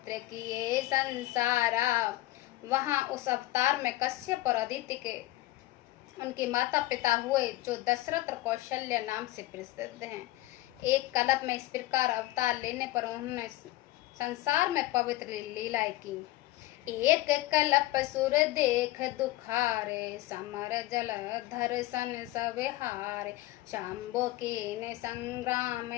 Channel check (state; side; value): quieter; right; 17.4 dB